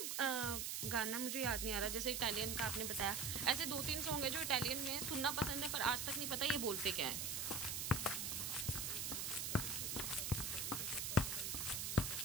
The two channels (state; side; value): noise; right; hiss, 1 dB below the sound